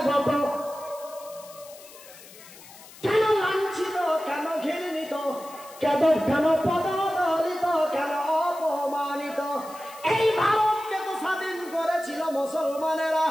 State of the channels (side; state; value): left; noise; hiss, 19 dB below the sound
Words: কেন লাঞ্ছিত, কেন ঘৃণিত, কেন পদদলিত, কেন অপমানিত? এই ভারতকে তো স্বাধীন করেছিল মুসলমানেরা,